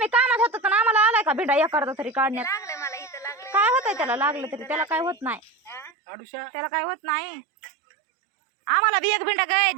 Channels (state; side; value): drops out; left; at 5.9 s